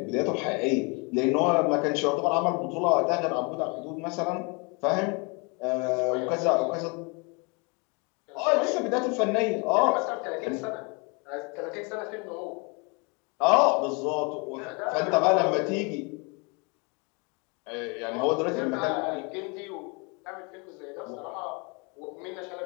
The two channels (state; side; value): quieter; right; 31.6 dB